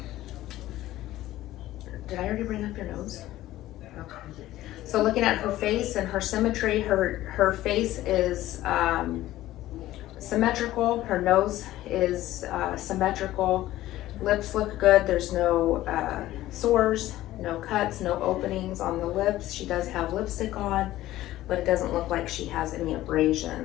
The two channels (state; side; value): quieter; right; 15.1 dB